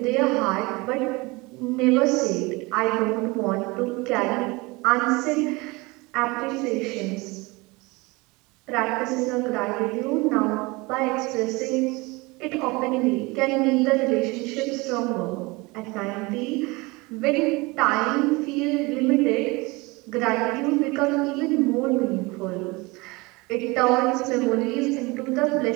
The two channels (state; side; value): quieter; left; 24.4 dB